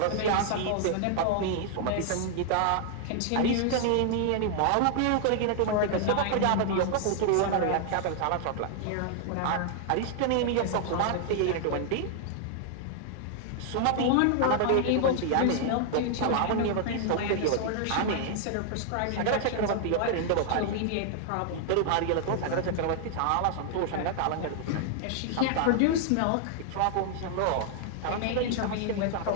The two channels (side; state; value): both; different; correlation -0.01